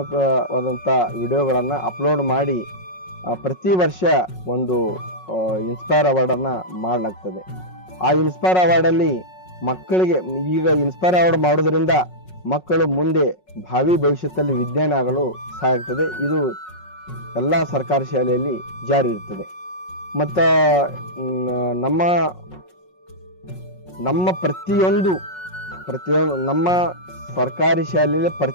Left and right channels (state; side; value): late; right; 5.4 ms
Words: ವಿಡಿಯೋಗಳನ್ನು ಅಪ್ಲೋಡ್ ಮಾಡಿ ಪ್ರತಿ ವರ್ಷ ಒಂದು ಇನ್ಸ್ಪೈರ್ ಅವಾರ್ಡನ್ನು ಮಾಡಲಾಗ್ತದೆ. ಆ ಇನ್ಸ್ಪೈರ್ ಅವಾರ್ಡಲ್ಲಿ ಮಕ್ಕಳಿಗೆ ಈಗ ಇನ್ಸ್ಪೈರ್ ಅವಾರ್ಡ್ ಮಾಡೋದ್ರಿಂದ ಮಕ್ಕಳು ಮುಂದೆ ಭಾವಿ ಭವಿಷ್ಯದಲ್ಲಿ ವಿಜ್ಞಾನಿ ಆಗಲು ಸಹಾಯ ಆಗ್ತದೆ. ಇದು ಎಲ್ಲ ಸರ್ಕಾರಿ ಶಾಲೆಯಲ್ಲಿ ಜಾರಿ ಇರ್ತದೆ. ಮತ್ತು ನಮ್ಮ ಪ್ರತಿಯೊಂದು ನಮ್ಮ ಸರ್ಕಾರಿ ಶಾಲೆಯಲ್ಲಿ